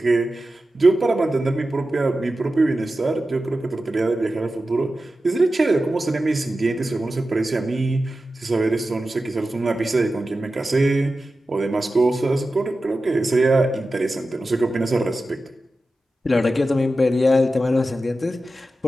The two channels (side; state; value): both; normal; correlation 0.93